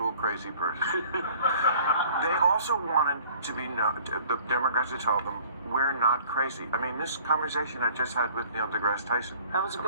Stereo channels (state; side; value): inverted; both; correlation -0.51